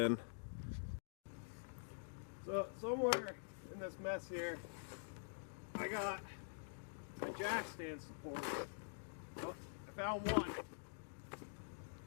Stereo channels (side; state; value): right; silent; digital silence